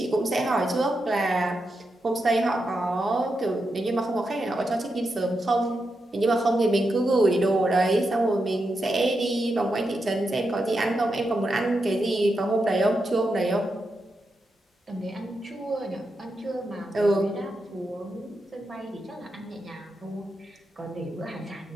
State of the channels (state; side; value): normal; both; correlation 0.86